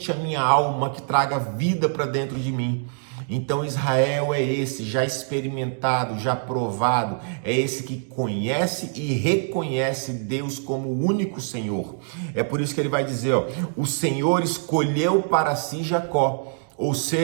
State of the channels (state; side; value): silent; left; digital silence